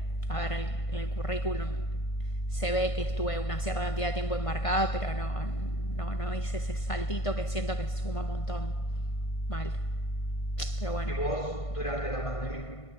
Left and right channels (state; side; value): late; right; 1.5 ms